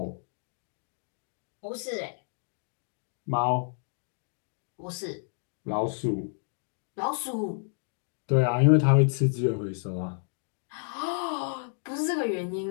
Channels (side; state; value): right; silent; 58 dB below the other